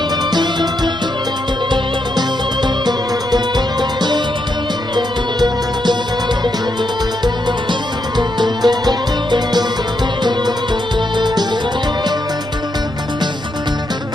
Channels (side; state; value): both; normal; correlation 0.81